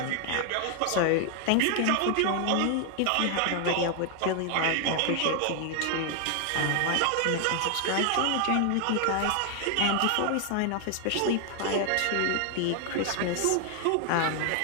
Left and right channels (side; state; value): both; different; correlation 0.00